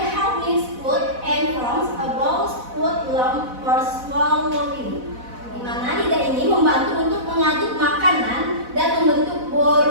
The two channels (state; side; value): late; left; 4.0 ms